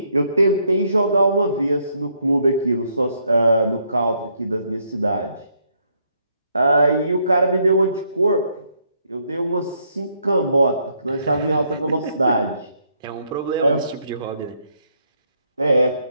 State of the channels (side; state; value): both; inverted; correlation -0.73